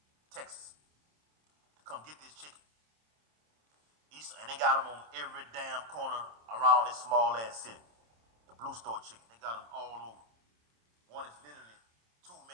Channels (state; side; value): late; left; 27 ms